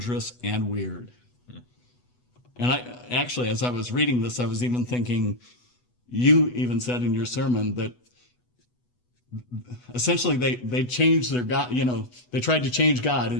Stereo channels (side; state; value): right; late; 8.1 ms